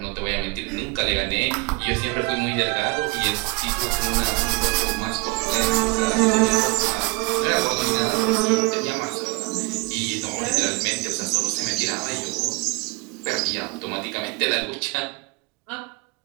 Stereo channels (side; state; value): left; quieter; 26.9 dB